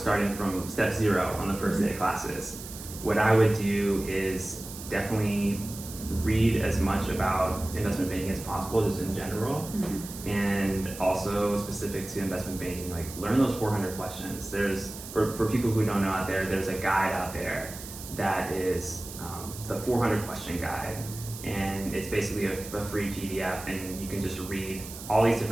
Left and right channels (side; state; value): right; noise; hiss, 12 dB below the sound